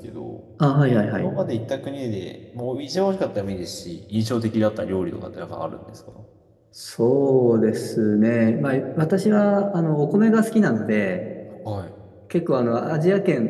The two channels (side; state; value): both; identical; correlation 1.00